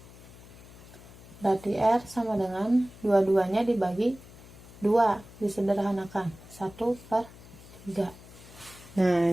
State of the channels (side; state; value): left; noise; hum, 20 dB below the sound